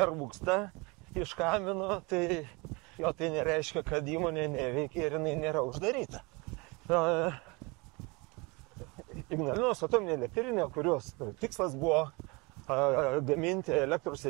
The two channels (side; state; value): left; quieter; 27.3 dB